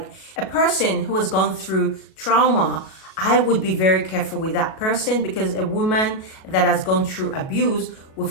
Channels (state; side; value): late; right; 37 ms